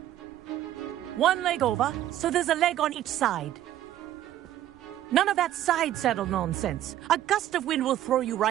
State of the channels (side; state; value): left; quieter; 12.5 dB